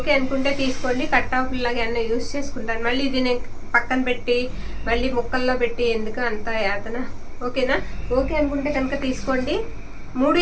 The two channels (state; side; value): identical; both; correlation 1.00